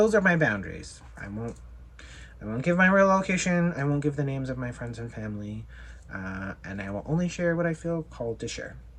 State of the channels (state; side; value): identical; both; correlation 1.00